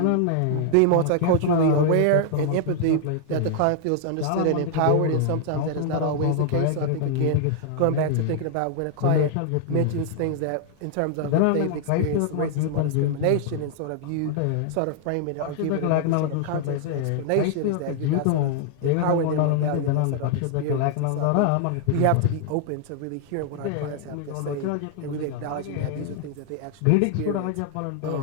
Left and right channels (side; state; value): both; different; correlation -0.01